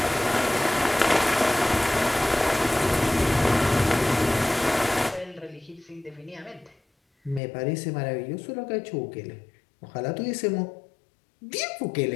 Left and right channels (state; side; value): drops out; right; at 7.4 s